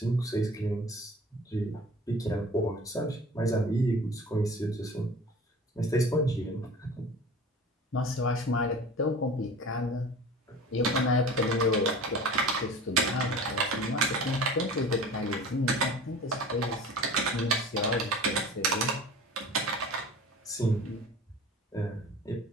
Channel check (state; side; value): normal; both; correlation 0.39